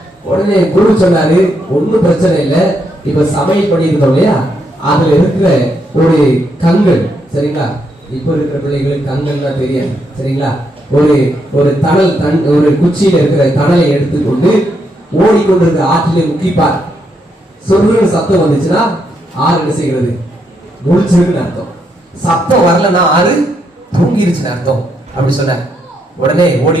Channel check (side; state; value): both; normal; correlation 0.78